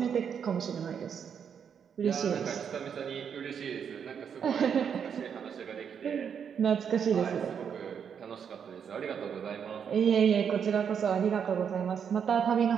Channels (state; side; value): quieter; left; 7.5 dB